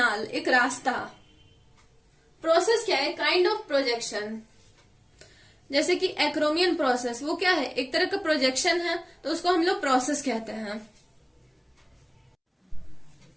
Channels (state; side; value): identical; both; correlation 1.00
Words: एक रास्ता। प्रोसेस क्या है, काइंड ऑफ प्रोजेक्शन। जैसे कि एक्रोमियन प्रोसेस, वो क्या है, एक तरह का प्रोजेक्शन है तो उसको हम लोग प्रोसेस कहते हैं।